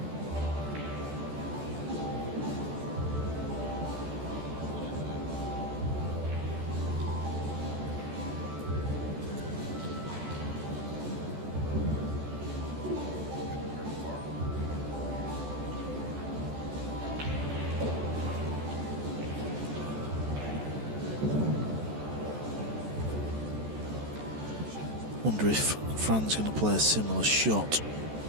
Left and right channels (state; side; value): late; left; 14 ms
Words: Wonder if Fran's going to play a similar shot.